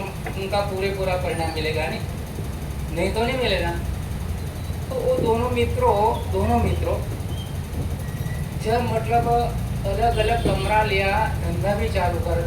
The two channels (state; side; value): identical; both; correlation 1.00